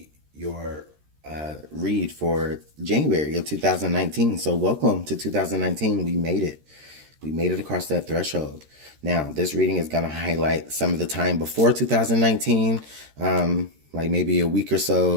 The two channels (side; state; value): left; late; 13 ms